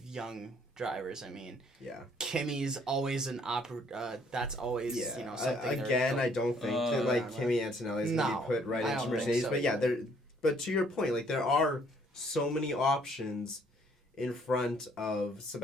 young drivers. I mean, Kimi's always that's always something. Again, I don't think that Kimi Antonelli is going to be put right into Mercedes. So, but to your point, there are so many options in front of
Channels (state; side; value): normal; both; correlation 0.63